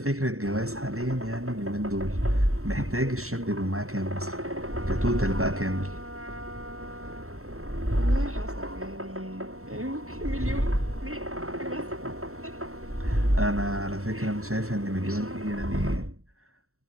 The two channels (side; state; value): left; late; 0.63 ms